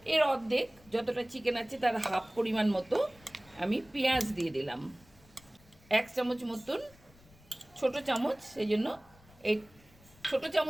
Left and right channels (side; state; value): left; noise; rumble, 27 dB below the sound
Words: এর অর্ধেক, যতটা চিকেন আছে তার হাফ পরিমাণ মতো আমি পেঁয়াজ দিয়ে দিলাম। 1 চামচ মতন, ছোট চামচ, সেই জন্য এই ছোট